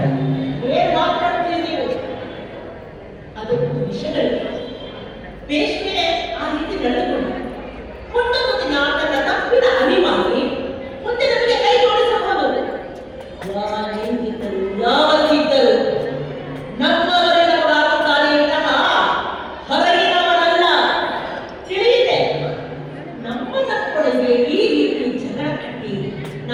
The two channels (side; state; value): both; identical; correlation 1.00